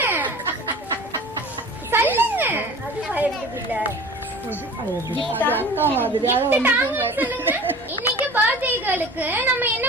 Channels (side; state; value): both; normal; correlation 0.40